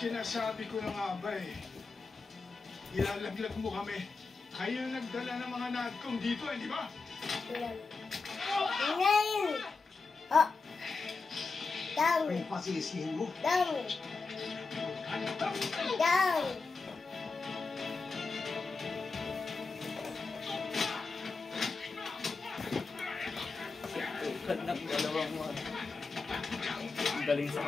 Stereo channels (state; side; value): quieter; right; 4.2 dB